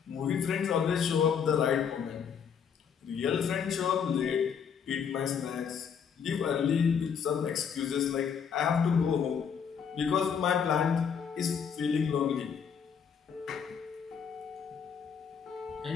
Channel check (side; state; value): right; quieter; 7.1 dB